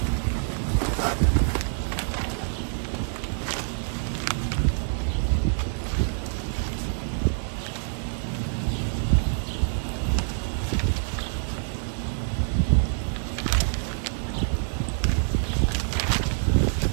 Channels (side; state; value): left; silent; digital silence